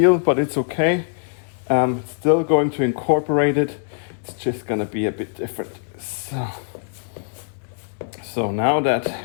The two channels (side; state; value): right; silent; digital silence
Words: but it's okay. Still going to incorporate it. It's just gonna be a bit different. So now that